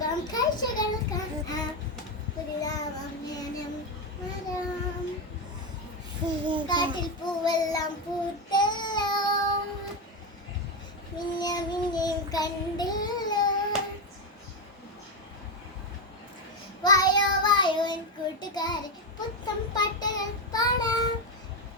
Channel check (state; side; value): normal; both; correlation 0.09